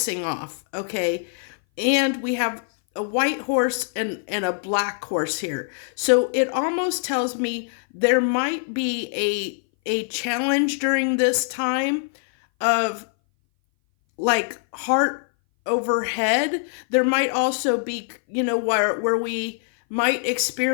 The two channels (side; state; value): right; silent; 59 dB below the other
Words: off, okay? And we have a white horse and a black horse here. So it almost tells me there might be a challenge during this time of like heart over head. There might also be, where we might